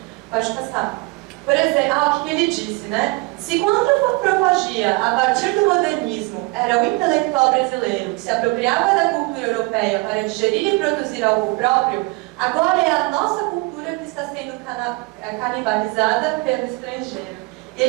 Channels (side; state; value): left; quieter; 25.1 dB